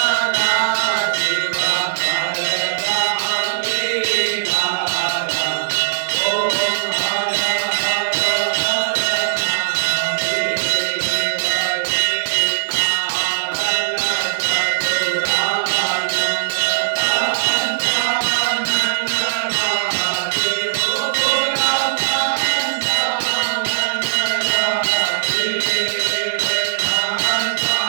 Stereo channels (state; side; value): silent; left; 67 dB below the other